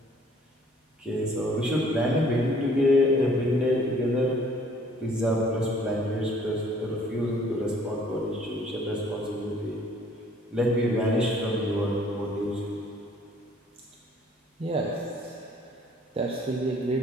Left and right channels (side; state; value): both; normal; correlation 0.58